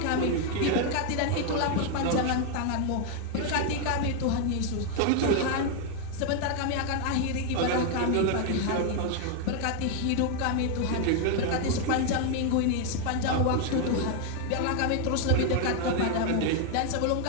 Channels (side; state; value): both; different; correlation 0.01